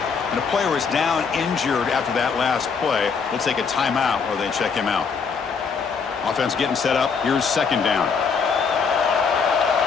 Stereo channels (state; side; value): quieter; right; 5.7 dB